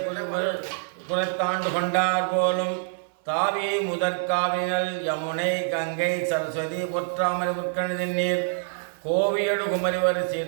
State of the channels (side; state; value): left; silent; 56 dB below the other